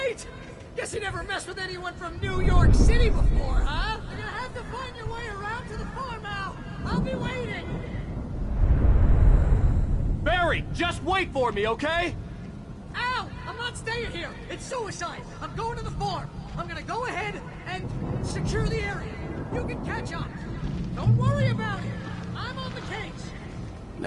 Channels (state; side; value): identical; both; correlation 1.00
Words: Guess you never messed with anyone from New York City before, huh? You're gonna have to find your way around to the farm, Al! I'll be waiting! Barry, just wait for me, okay? Al! I'm not staying here! It's suicide! I'm going to the farm! I'm gonna go ahead and secure the area. You can catch up. Don't worry about it. I'm on the case.